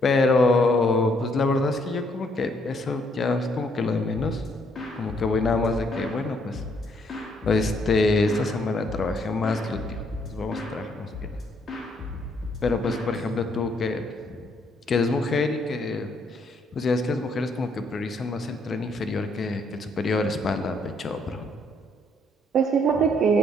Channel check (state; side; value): normal; both; correlation 0.70